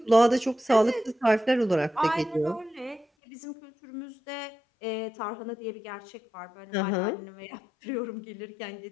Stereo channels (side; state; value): right; drops out; at 3.1 s